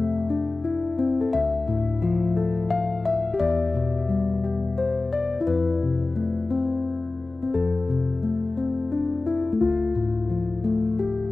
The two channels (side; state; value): right; quieter; 3.1 dB